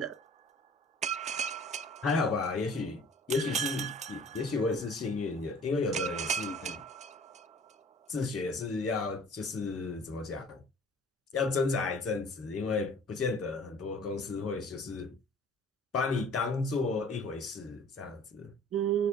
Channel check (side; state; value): both; normal; correlation 0.49